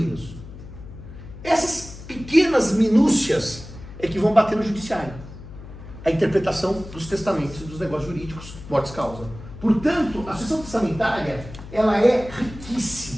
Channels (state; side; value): noise; left; hum, 14 dB below the sound